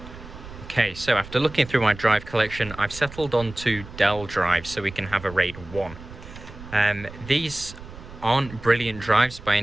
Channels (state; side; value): noise; right; rumble, 15 dB below the sound